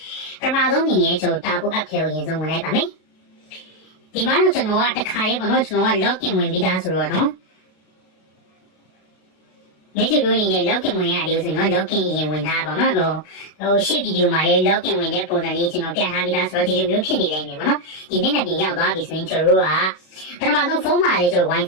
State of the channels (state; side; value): late; right; 32 ms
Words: ပထမဆုံးအနေနဲ့ကျွန်တော်တာပို app ထဲကိုရင်ဆုံးဝင်လိုက်ပါမယ်ဒီမှာတော့ကျွန်တော်ကတစ်ခါလေးပေါ့နော်ကျွန်တော်က login ဝင်ပြီးသားဆိုတော့နော်ဒီလိုလိုနေ login ဝင်ရတယ်ဆိုရင်တော့ login ရင်ဝင်ထားပါတော့ဟိုရှေ့ဗီဒီယိုမှာလည်း login ဝင်တဲ့ပုံစံလေးကျွန်တော်ပြထားပြီးသားဆိုတော့ဒီလိုမျိုးဖြစ်နေနိုင်မယ်ပေါ့နော်ဒီနေ့နဲ့ပြင်ရောက်သွားပြီဆိုရင်ကျွန်တော်တို့ကပထမဆုံးဖုန်းမှာလေးကျွန်တော်